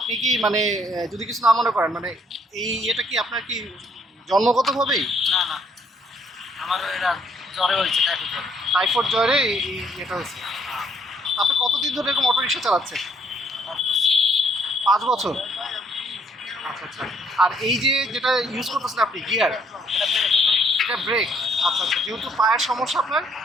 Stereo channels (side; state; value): both; normal; correlation 0.66